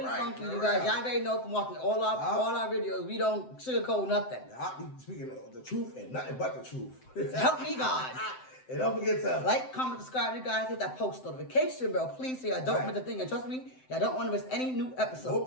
funky, you guys. Y'all already know from watching all our videos, we don't sugarcoat nothing. I'll be speaking of the truth and nothing but the truth. Help me, God. And don't forget to like, comment, subscribe, you guys. Hit that post notification bell, please, so y'all don't miss a thing. And trust me, y'all don't want to miss any new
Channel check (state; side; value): late; right; 7.8 ms